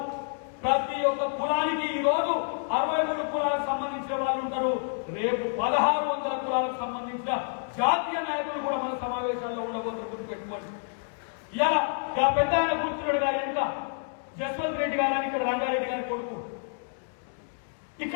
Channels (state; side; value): silent; right; digital silence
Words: ప్రతి ఒక్క కులానికి ఈ రోజు 63 కులాలకు సంబంధించిన వాళ్ళు ఉంటారు. రేపు 1,600 కులాలకు సంబంధించిన జాతీయ నాయకులు కూడా మన సమావేశాల్లో ఉండబోతున్నారు. గుర్తుపెట్టుకోండి. ఇలా పెద్ద ఆయన కూర్చున్నాడు గారు ఎంత జస్వంత్ రెడ్డి గారు అని, ఇక్కడ రంగారెడ్డి గారి కొడుకు.